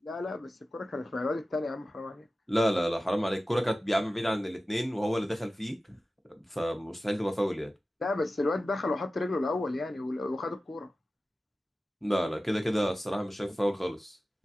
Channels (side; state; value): both; normal; correlation 0.95